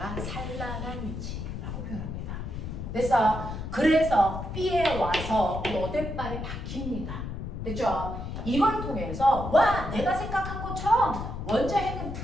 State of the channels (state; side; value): noise; left; rumble, 6 dB below the sound